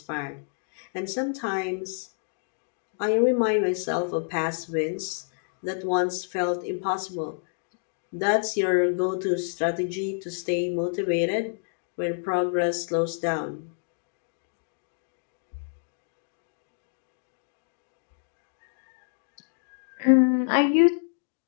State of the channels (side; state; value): right; silent; digital silence